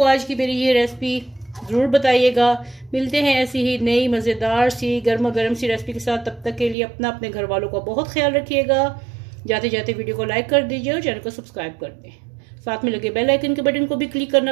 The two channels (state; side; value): drops out; left; at 6.8 s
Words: आज की मेरी ये रेसिपी ज़रूर बताइएगा। मिलते हैं ऐसी ही नई मज़ेदार सी गर्मा गर्म सी रेसिपी के साथ। तब तक के लिए अपने घर वालों का बहुत ख्याल रखिएगा। जाते जाते वीडियो को लाइक कर दीजिए और चैनल को सब्सक्राइब कर दें। साथ में लगे बेल आइकन के बटन को भी क्लिक